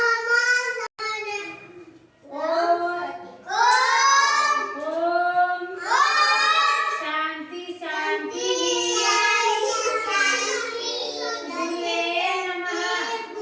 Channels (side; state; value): both; identical; correlation 1.00